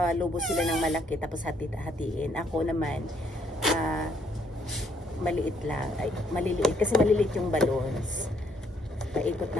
sila ng malaki tapos hatiin. Ako naman, maliit lang. Ay, maliliit. Kasi maliliit yung balloons. Paikot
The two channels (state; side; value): normal; both; correlation 0.69